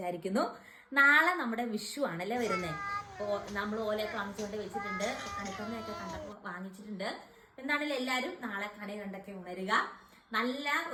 നാളെ നമ്മുടെ വിഷു ആണല്ലേ വരുന്നത്. അപ്പോൾ നമ്മൾ ഓലയൊക്കെ വാങ്ങിച്ചുകൊണ്ട് വെച്ചിട്ടുണ്ട്, കണിക്കൊന്നയൊക്കെ കണ്ടപ്പോൾ വാങ്ങിച്ചിട്ടുണ്ട്. എന്താണെങ്കിലും എല്ലാവരും നാളെ കണി കണ്ടൊക്കെ ഉണരുക. നല്ല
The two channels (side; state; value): both; identical; correlation 1.00